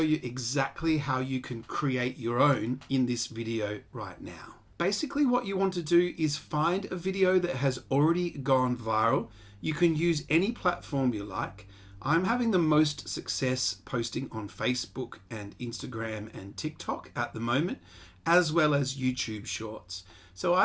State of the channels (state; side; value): identical; both; correlation 1.00